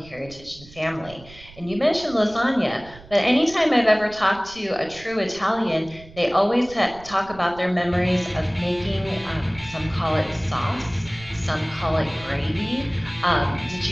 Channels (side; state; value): right; noise; rumble, 20 dB below the sound